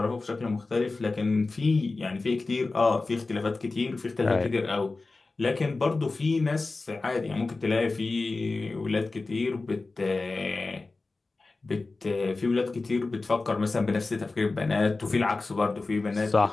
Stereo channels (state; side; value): quieter; right; 3.6 dB